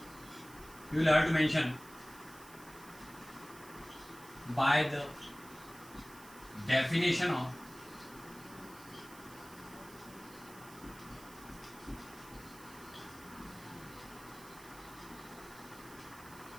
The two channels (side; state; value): right; noise; hiss, 19 dB below the sound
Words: you will have to mention by the definition of